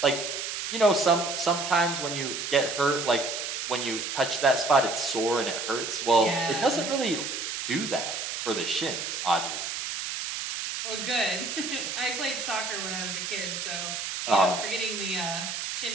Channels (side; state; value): right; noise; hiss, 4 dB below the sound